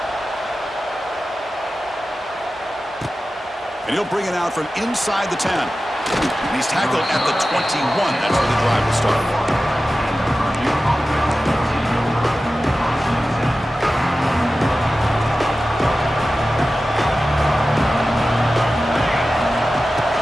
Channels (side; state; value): both; normal; correlation 0.94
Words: And he'll bring it out from inside the 10. And he's tackled at the 21. That's where the drive will start.